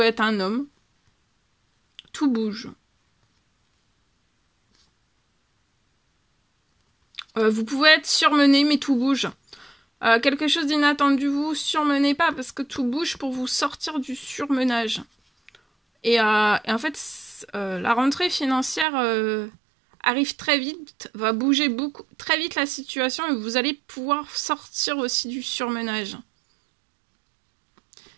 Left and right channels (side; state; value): left; drops out; at 18.9 s